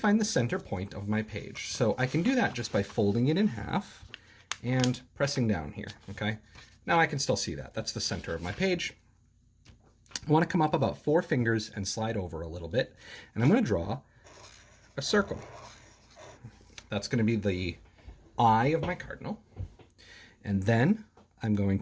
the center point of my page. So I can do that just by folding it in half and pressing down here, okay? Now I can still see that. That's the center of my page. I want to come up about 4 fingers and slide over a little bit, and I'm going to draw a circle. That's going to be the eye of my cardinal, and then I'm going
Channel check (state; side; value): identical; both; correlation 1.00